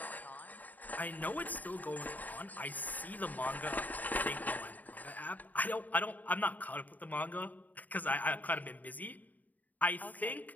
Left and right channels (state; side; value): late; right; 0.079 ms